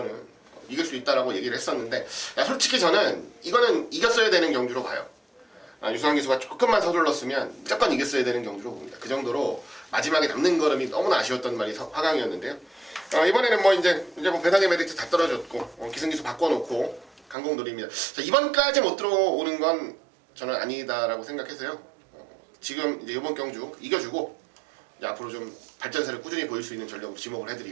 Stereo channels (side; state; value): left; drops out; at 17.4 s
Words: 이길 수 있다라고 얘기를 했었는데 솔직히 저는 이거는 이겼어야 되는 경주로 봐요. 유수환 기수가 조금만 서둘렀으면 무조건 이겼어야 되는 경주로 봅니다. 그 정도로 마지막에 남는 걸음이 너무나 아쉬웠던 말이 화강이었는데요. 이번에는 뭐 이제 뭐 배당의 메리트 다 떨어졌고 기승기수 바꿔놓고 강공돌이입니다. 자, 이번까지 못 들어오는 건 저는 아니다라고 생각해서요. 지금 이제 이번 경주 이겨주고 이제 앞으로 좀 발전세를 꾸준히 보일 수 있는 전력으로 지목을